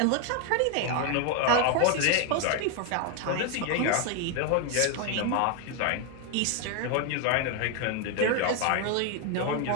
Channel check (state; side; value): different; both; correlation 0.01